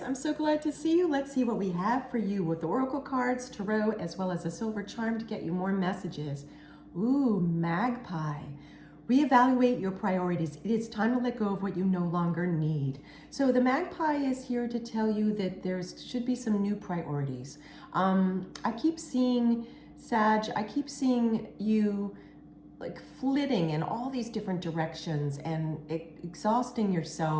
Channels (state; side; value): identical; both; correlation 1.00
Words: so glad to see you. Let's see what we have for you with the Oracle cards, Tarot, as well as a silver charm to get you more messages. Ooh, Magpie. Reevaluate your priorities. It is time to let go of what you no longer need. So the Magpie is here to tell you that there should be some new priorities. I keep seeing, Sag, I keep seeing you like flitting in all these different directions and exhausting